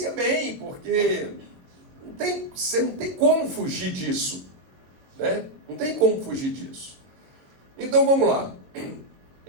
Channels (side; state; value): left; late; 22 ms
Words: bem, porque você não tem como fugir disso. Né? Não tem como fugir disso. Então vamos lá.